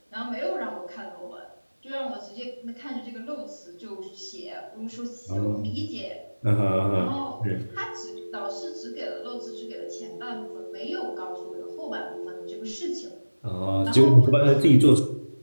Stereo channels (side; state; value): both; inverted; correlation -1.00